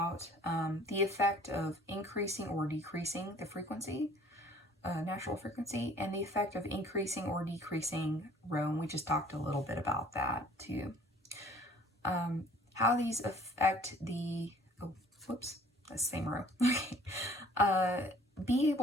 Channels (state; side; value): normal; both; correlation 0.54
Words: The effect of increasing or decreasing the frequency. Natural frequency, and the effect of increasing or decreasing rho, and we just talked a little bit about that too. How these affect the, that's the same row. Okay. Be